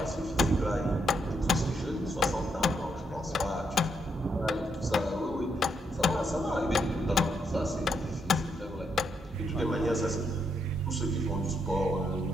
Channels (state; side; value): normal; both; correlation 0.78